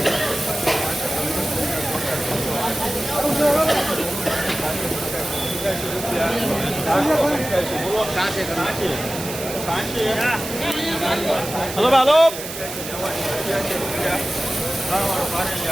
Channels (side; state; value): right; noise; hiss, 9 dB below the sound